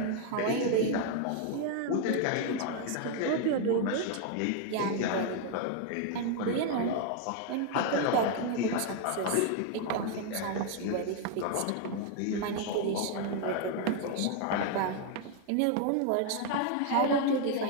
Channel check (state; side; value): different; both; correlation 0.01